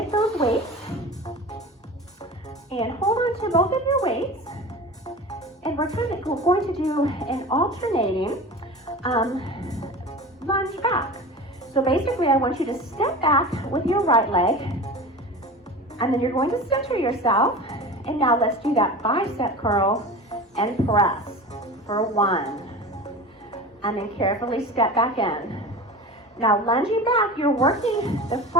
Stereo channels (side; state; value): both; normal; correlation 0.33